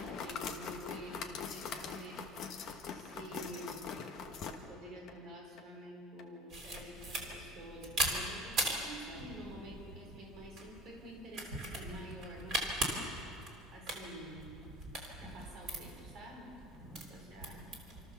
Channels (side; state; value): both; normal; correlation 0.41